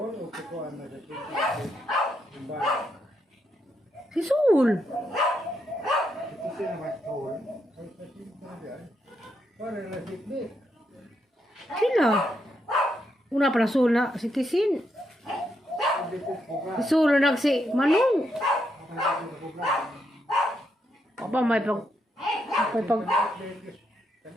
Si Sol. Sila. Una pa na Sol na citizen. Si Sol na si Manong. Apa may pag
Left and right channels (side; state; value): both; normal; correlation 0.80